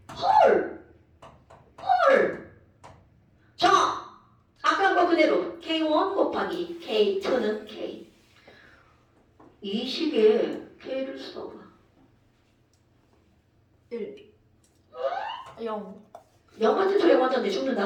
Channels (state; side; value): identical; both; correlation 1.00